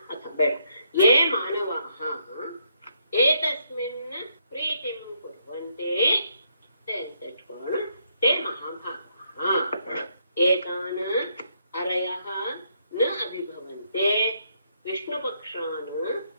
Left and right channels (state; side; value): inverted; both; correlation -0.74